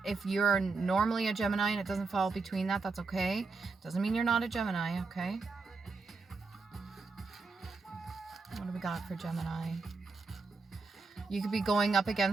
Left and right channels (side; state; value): left; quieter; 4.2 dB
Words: If you're normally a Gemini and it doesn't fall between that, that's okay. Doesn't mean you're not a Gemini, okay? What do we got for Gemini? You could be going up